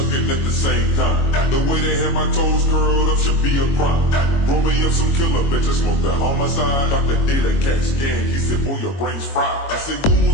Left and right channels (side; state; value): right; late; 22 ms